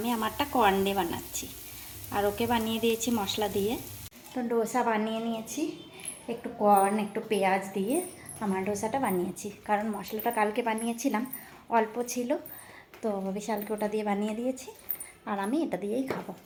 আমারটা কর্ন দিয়ে বানাচ্ছি, আর ওকে বানিয়ে দিয়েছি মশলা দিয়ে। তো ডোসা বানিয়ে নিয়েছি, একটু কর্ন একটু পেঁয়াজ দিয়ে আমার ডোসাটা বানিয়েছি, কারণ মশলাটা কালকে বানিয়েছিলাম, অল্প ছিল, তো বিশালকে ওটা দিয়ে বানিয়ে দিয়েছি। আর আমি এটা দিয়েই খাবো,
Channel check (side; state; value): both; identical; correlation 1.00